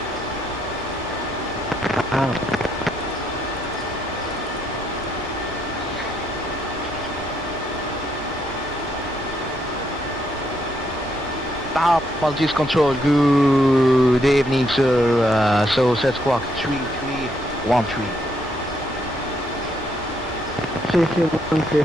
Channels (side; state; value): both; normal; correlation 0.74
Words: Maltese Control, good evening sir, so set squawk 3313. 3313